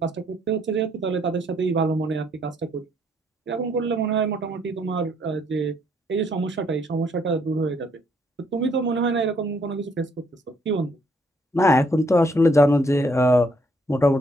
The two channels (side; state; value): both; normal; correlation 0.69